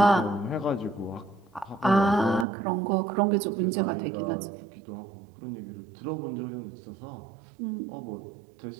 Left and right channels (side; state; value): left; drops out; at 2.5 s